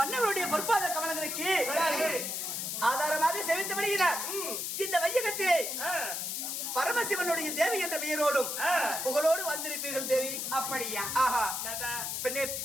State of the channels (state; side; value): noise; left; hiss, 3 dB below the sound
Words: பொற்பாத கமலங்களுக்கு ஆதாரமாக செவித்து வருகிறார். இந்த வையகத்திலே பரமசிவனுடைய தேவி என்ற பெயரோடும் புகழோடு வந்திருப்பீர்கள் தேவி. அப்படியா? ஆஹா. பெண்ணே